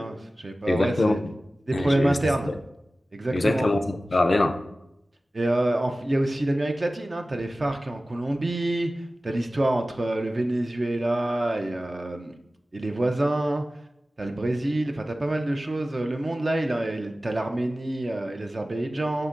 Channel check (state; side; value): normal; both; correlation 0.96